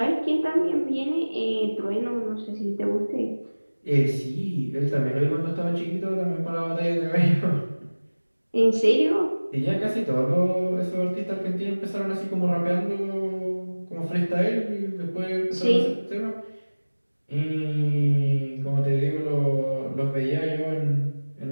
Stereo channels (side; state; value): both; inverted; correlation -1.00